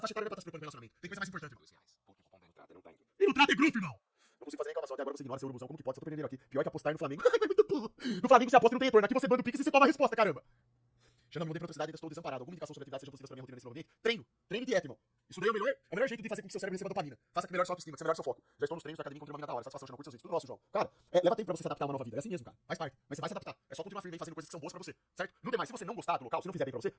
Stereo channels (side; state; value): both; identical; correlation 1.00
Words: faixa etária não é pra estar se preocupando com relacionamento. Tem coisa mais importante. R$2. Porque o cupom da entrada não tá indo. E no trato é grupo, irmão. Não consigo fazer reclamação até agora, você ignora seu urubuzão. Como que pode? Só tô perdendo aqui. Pior que apostar no Flamengo. É muito burro. No Flamengo você aposta e não tem retorno. Aqui você manda o Pix e você toma a resposta, caramba. Xandão, não tem praticidade, ainda estou desamparado. Alguma indicação sobre atividade seja possível para minha rotina nesse novo ambiente? Treino. Treino e dieta, irmão. Isso daí é o melhor jeito de fazer com que seu cérebro receba dopamina. Faça que melhore sua autoestima, que você melhore seu foco. Já estou nos treinos da academia, encontrei uma mina da hora. Satisfação, chama curso seus vídeos. Tudo nosso, João. Cara, leva tempo pra você se adaptar a uma nova vida. É assim mesmo, cara. Faz parte. Mas você vai se adaptar. É só continuar firme aí fazendo coisas que são boas pra você, certo? Não tem mais. Se você não gostar do local, se não fizer bem pra você,